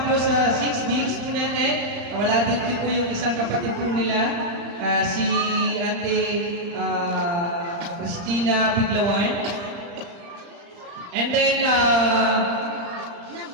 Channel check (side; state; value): left; late; 35 ms